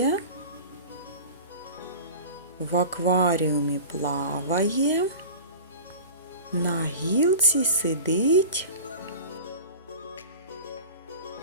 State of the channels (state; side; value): inverted; both; correlation -0.36